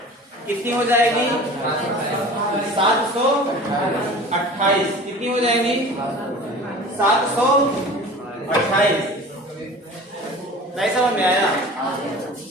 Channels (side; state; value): both; normal; correlation 0.40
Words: कितनी हो जाएगी? 728। कितनी हो जाएगी? 728। नहीं समझ में आया?